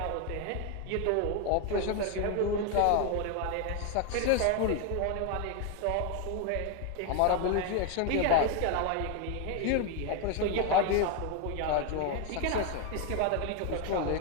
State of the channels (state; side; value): different; both; correlation 0.01